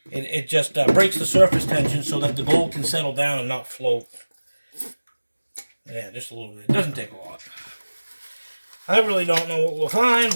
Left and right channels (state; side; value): inverted; both; correlation -1.00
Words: just breaks the surface tension so that the gold can settle down and not float. Yeah, just a little bit. It doesn't take a lot. I really don't know what we'll find,